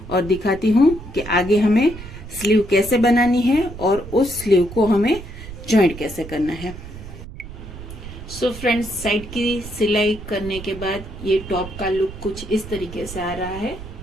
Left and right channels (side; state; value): right; noise; rumble, 12 dB below the sound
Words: और दिखाती हूँ कि आगे हमें स्लीव कैसे बनानी है और उस स्लीव को हमें ज्वाइंट कैसे करना है। सो फ्रेंड्स, साइड की सिलाई करने के बाद ये टॉप का लुक कुछ इस तरीके से आ रहा है।